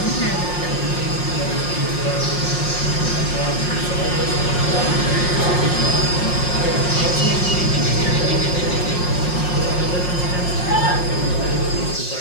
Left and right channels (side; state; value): right; late; 5.6 ms